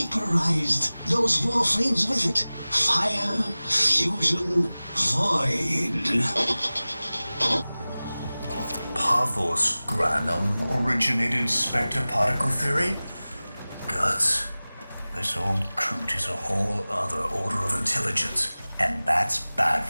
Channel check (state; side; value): inverted; both; correlation -0.98